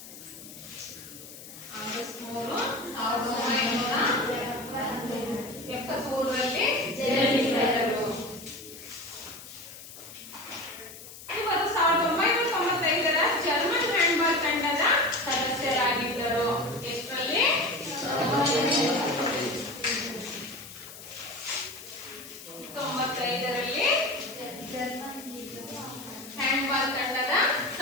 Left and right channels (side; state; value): left; noise; hiss, 15 dB below the sound